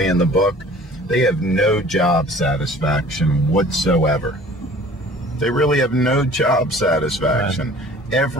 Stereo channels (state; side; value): normal; both; correlation 0.48